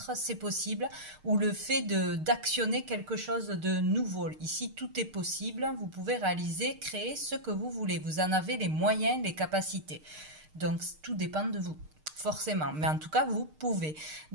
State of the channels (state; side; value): late; left; 6.5 ms